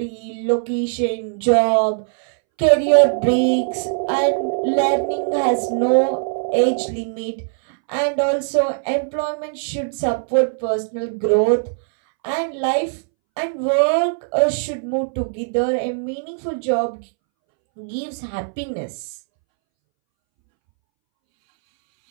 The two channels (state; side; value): silent; left; 65 dB below the other